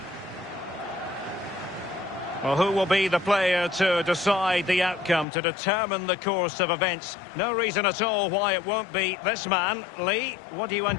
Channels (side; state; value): right; drops out; at 5.2 s